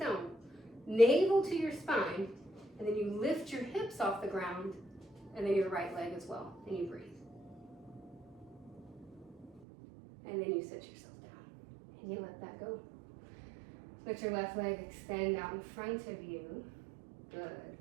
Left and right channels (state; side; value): drops out; left; at 9.6 s